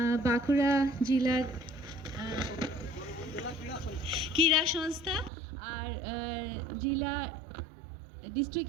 বাঁকুড়া জেলার ক্রীড়া সংস্থা আর জেলা ডিস্ট্রিক্ট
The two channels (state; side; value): drops out; left; at 5.3 s